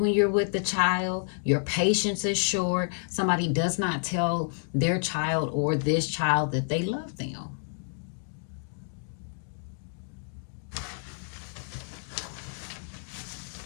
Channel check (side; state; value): right; silent; digital silence